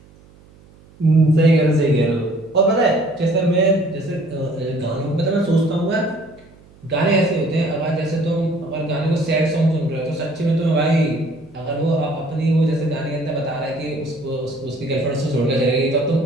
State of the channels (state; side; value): noise; right; hum, 26 dB below the sound